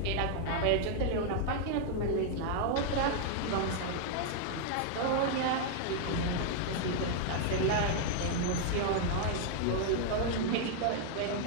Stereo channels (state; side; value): different; both; correlation 0.00